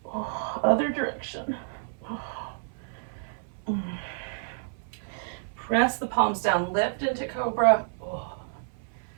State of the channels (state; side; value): silent; left; 58 dB below the other